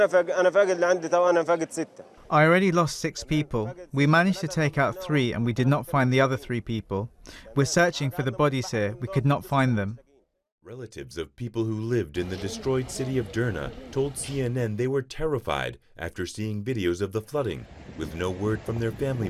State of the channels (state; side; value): identical; both; correlation 1.00